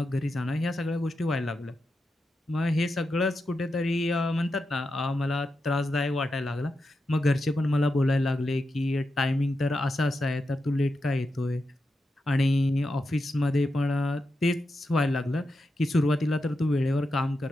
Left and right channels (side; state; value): both; normal; correlation 0.88